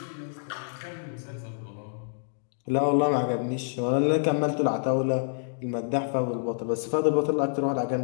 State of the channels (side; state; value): right; silent; digital silence